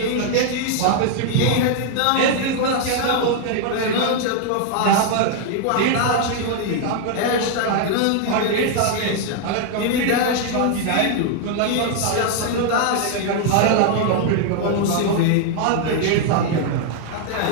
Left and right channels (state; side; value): different; both; correlation 0.00